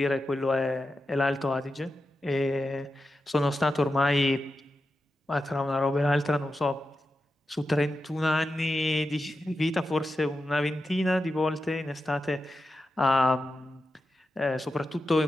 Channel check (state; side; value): normal; both; correlation 0.90